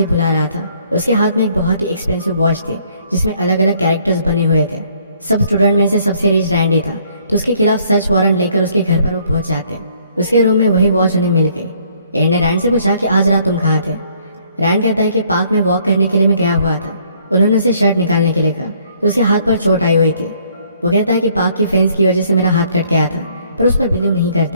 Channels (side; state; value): both; inverted; correlation -0.63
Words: बुला रहा था। उसके हाथ में एक बहुत ही एक्सपेंसिव वॉच थी जिसमें अलग अलग कैरेक्टर्स बने हुए थे। सब स्टूडेंट में से सबसे रिच रैंडी था तो उसके खिलाफ सर्च वारंट लेकर उसके घर पर वो पहुंच जाते हैं। उसके रूम में वही वॉच उन्हें मिल गई। एड ने रैंड से पूछा कि आज रात तुम कहाँ थे। रैंड कहता है कि पार्क में वॉक करने के लिए मैं गया हुआ था। उन्होंने उसे शर्ट निकालने के लिए कहा तो उसके हाथ पर चोट आई हुई थी। वो कहता है कि पार्क की फेंस की वजह से मेरा हाथ कट गया था, पर उस पर बिलीव नहीं